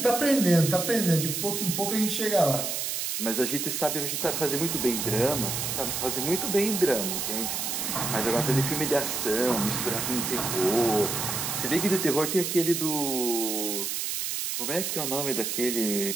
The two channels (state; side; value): noise; right; hiss, 2 dB below the sound